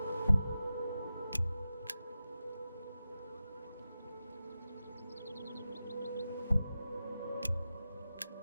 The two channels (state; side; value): inverted; both; correlation -0.92